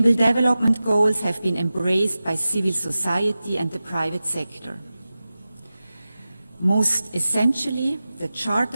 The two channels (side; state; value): both; inverted; correlation -0.95